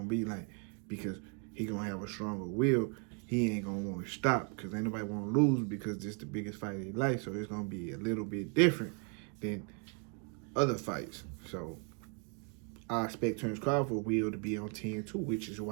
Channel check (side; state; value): left; quieter; 39.0 dB